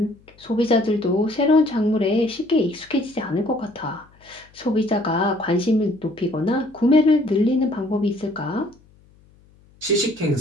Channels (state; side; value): noise; left; hum, 29 dB below the sound